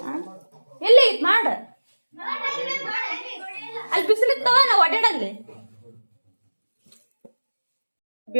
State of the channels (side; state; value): both; inverted; correlation -1.00